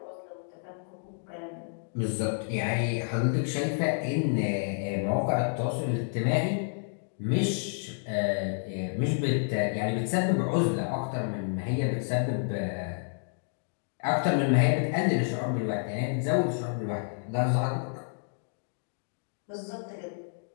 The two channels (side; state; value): right; silent; digital silence